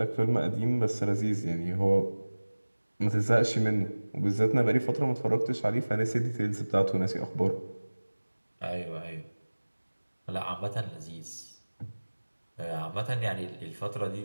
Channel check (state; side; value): inverted; both; correlation -1.00